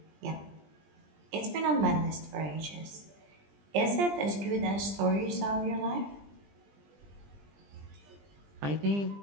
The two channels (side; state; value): left; late; 20 ms